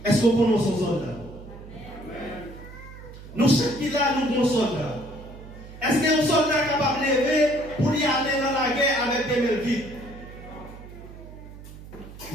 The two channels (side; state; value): right; noise; hum, 16 dB below the sound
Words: Est-ce que nous sommes soldats? Nous, chaque qui là, nous sommes soldats. Est-ce que nous sommes soldats capables de lever pour y aller dans la guerre avec des mains vides?